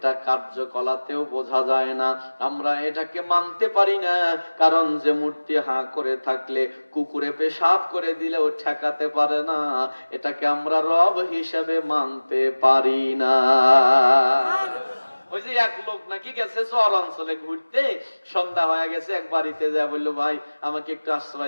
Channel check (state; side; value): inverted; both; correlation -1.00